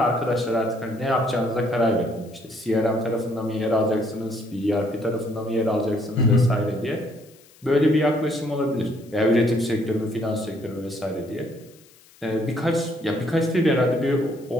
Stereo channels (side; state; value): left; noise; hiss, 27 dB below the sound